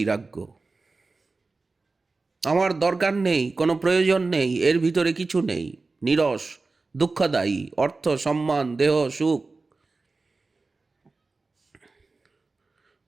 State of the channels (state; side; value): quieter; left; 3.7 dB